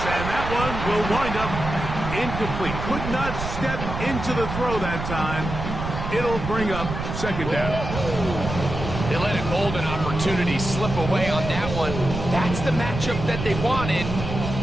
and that one will wind up incomplete. Could not step into the throw that time. It'll bring up 2nd down. They let a golden opportunity slip away on that one. That's the matchup that they wanted.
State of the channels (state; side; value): noise; right; rumble, 6 dB below the sound